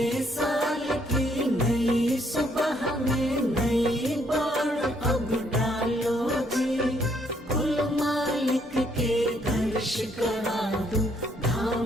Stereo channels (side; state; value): both; normal; correlation 0.69